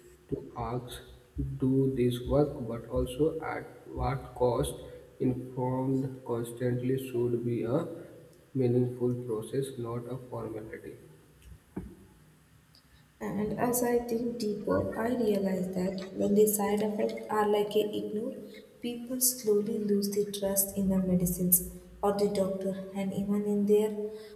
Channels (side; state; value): both; identical; correlation 1.00